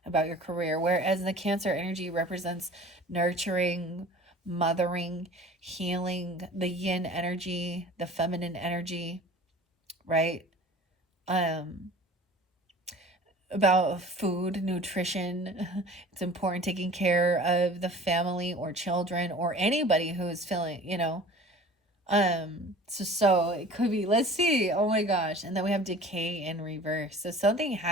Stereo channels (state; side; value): normal; both; correlation 0.44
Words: About your career. Whereas the Cancer energy represents nurturing, mothering, healing, the yin energy, the feminine energy, right? About food, nutrition. It's important taking care of the family or children or anybody who is feeling, so it could be, let's see. Oh my gosh. And then we have decay in reverse. So something